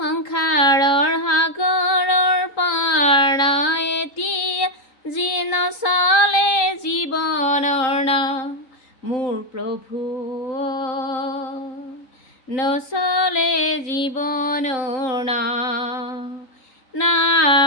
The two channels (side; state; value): right; late; 3.8 ms